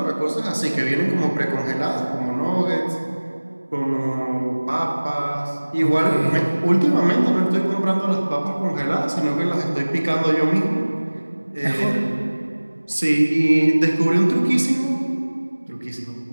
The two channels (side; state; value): both; inverted; correlation -1.00